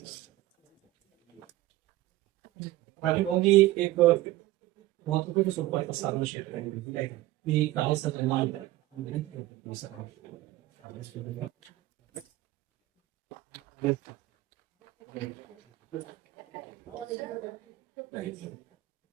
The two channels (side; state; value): left; quieter; 16.8 dB